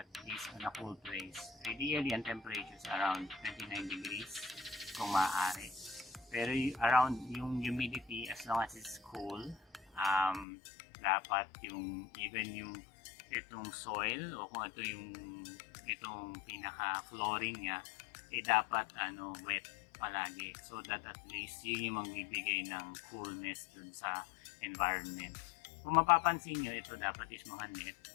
is on a cool place. Ideally, ang temperature is around 29 degrees kung maaari. Pero around yung humidity, as long as it's cool, dapat yung even yung itong soil o kung ito yung itong pinaka flooring niya, dapat wet palagi, so that at least yun yung magbibigay ng coolness dun sa environment. Kung mapapansin nyo, ito dapat is mga net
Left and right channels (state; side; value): drops out; right; at 10.5 s